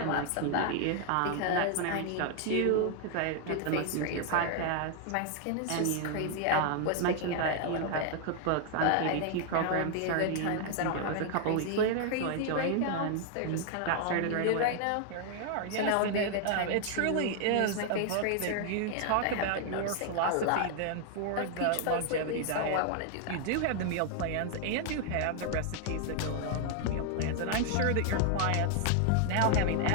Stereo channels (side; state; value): both; different; correlation 0.00